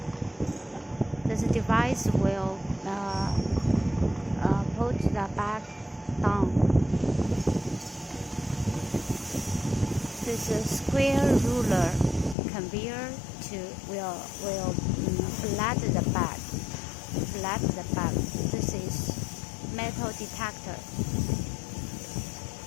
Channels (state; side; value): drops out; right; at 12.4 s